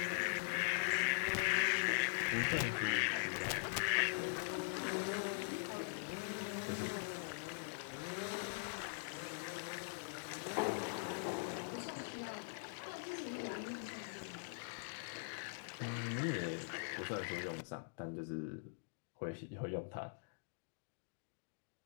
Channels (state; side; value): silent; right; digital silence